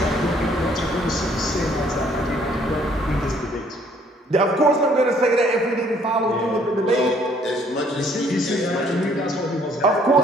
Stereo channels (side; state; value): both; normal; correlation 0.62